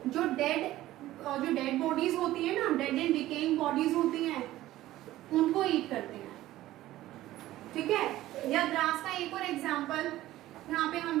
जो डेड बॉडीज होती है ना, डेड एंड डिकेइंग बॉडीज होती हैं, उनको ईट करते हैं। ठीक है। या ग्रास का एक और एग्जांपल यहाँ पे हम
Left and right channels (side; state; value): left; quieter; 15.3 dB